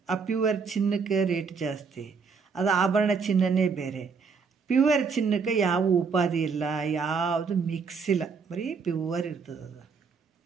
ಆ ಪ್ಯೂವರ್ ಚಿನ್ನಕ್ಕೆ ರೇಟ್ ಜಾಸ್ತಿ, ಅದು ಆಭರಣ ಚಿನ್ನನೇ ಬೇರೆ. ಪ್ಯೂವರ್ ಚಿನ್ನಕ್ಕೆ ಯಾವ ಉಪಾಧಿ ಇಲ್ಲ, ಯಾವುದು ಮಿಕ್ಸ್ ಇಲ್ಲ, ಬರೀ ಪ್ಯೂವರ್ ಇರ್ತದೆ ಅದು.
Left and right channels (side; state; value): left; quieter; 5.4 dB